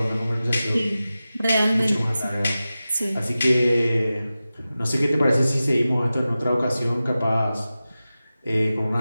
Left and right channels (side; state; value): both; inverted; correlation -0.95